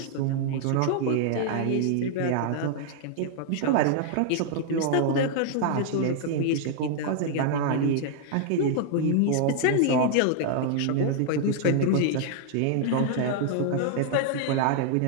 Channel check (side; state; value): both; different; correlation 0.00